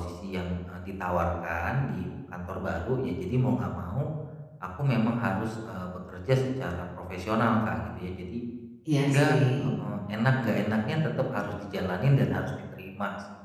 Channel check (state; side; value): identical; both; correlation 1.00